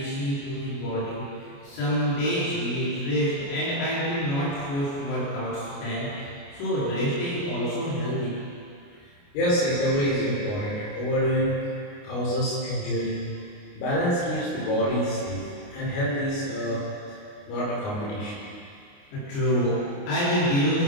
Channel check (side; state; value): right; late; 29 ms